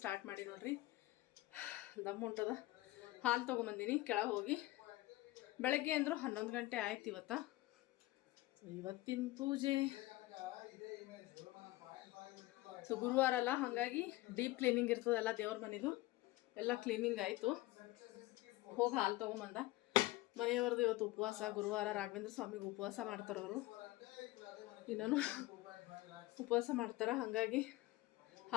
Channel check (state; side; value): quieter; right; 18.5 dB